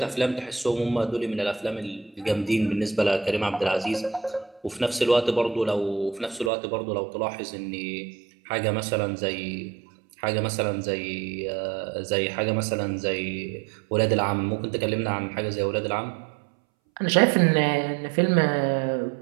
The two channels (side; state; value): left; drops out; at 6.5 s